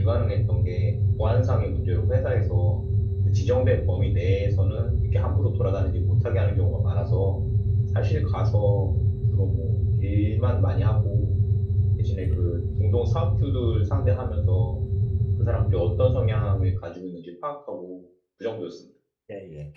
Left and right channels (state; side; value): identical; both; correlation 1.00